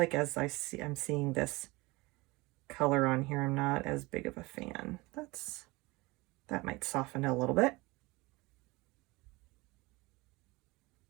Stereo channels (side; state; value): left; quieter; 23.1 dB